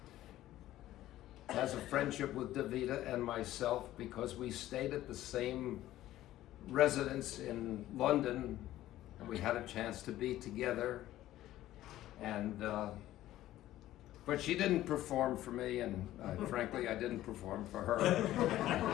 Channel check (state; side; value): quieter; right; 14.3 dB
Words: has a friendship with Davida and myself because we stayed at the same residence in London and we had a chance to be together. And but she didn't perform for me, and frankly I didn't perform for her.